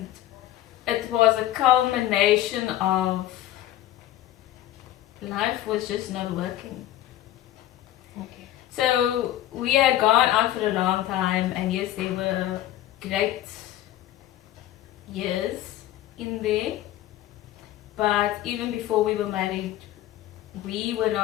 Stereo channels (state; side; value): quieter; right; 13.4 dB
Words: it was a culmination of life was just not working. okay. So we had gone out for a long time, and yes, there were great years in there. But even before we were married,